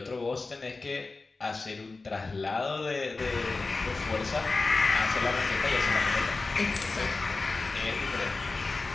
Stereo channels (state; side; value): quieter; right; 3.7 dB